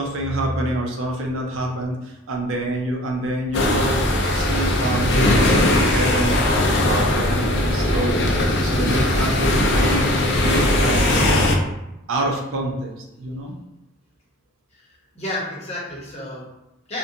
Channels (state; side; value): normal; both; correlation 0.48